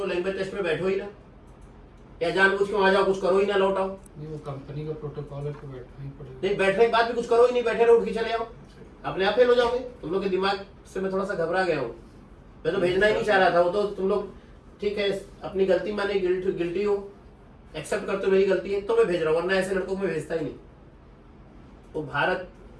लैंग्वेज टेस्ट में बैठो ही ना, या जानबूझ के वहां जाओ कुछ करो ही ना, लौट आओ। नहीं, वो कंपनी का प्रोटोकॉल है तो बैठना ही पड़ेगा। नहीं, बैठने के बाद भी कुछ करो ही नहीं, बैठे रहो, उठ के चले आओ, अपने आप फेल हो जाओगे। तुम लोग के दिमाग से मैं थोड़ा सा घबरा गया हूँ, मैं तो भेजना ही नहीं चाह रहा था। वो तो तुम लोग ठीक है अपनी गलती माने, गिल्टी हो, एक्सेप्ट करते हो मेरी गलती है तो मैं भेज रहा हूँ, वरना ऐसे लड़कों को मैं भेजता ही नहीं। वो भारत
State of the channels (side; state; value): both; identical; correlation 1.00